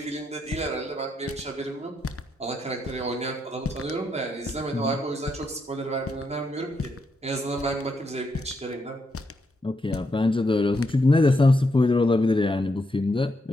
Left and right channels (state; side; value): normal; both; correlation 0.80